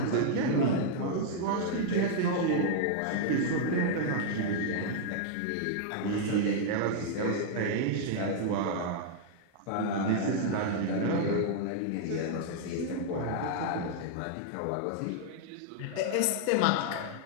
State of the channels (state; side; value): different; both; correlation -0.01